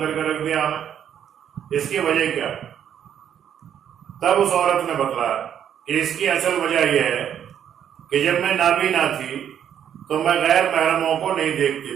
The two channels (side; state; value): left; quieter; 9.3 dB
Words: کے رکھ دیا ہمیں، اس کی وجہ کیا؟ تب اس عورت نے بتلایا کہ اس کی اصل وجہ یہ ہے کہ جب میں نابینا تھی تو میں غیر محرموں کو نہیں